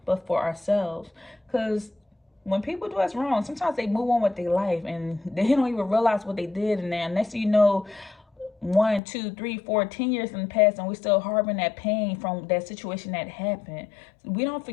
but for ourselves. Because when people do us wrong, sometimes they move on with their life and they don't even realize what they did. And then next thing you know, 1, 2, 3, 4, 10 years in the past, and we're still harboring that pain from that situation that happened. We don't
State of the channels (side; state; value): right; drops out; at 9.0 s